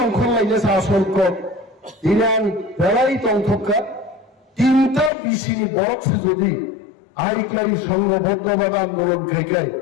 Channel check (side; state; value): right; drops out; at 5.1 s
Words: লাইছে আসল কর দিনান বেড়াই তংথকা তিনটা বিশিনি বরকছে যদি আইক্লাই সংঘবদ্ধভাবে আন্দোলন খাইকাই